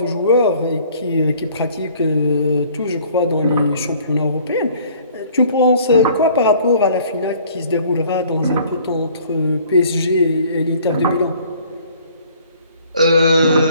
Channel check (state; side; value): inverted; both; correlation -0.55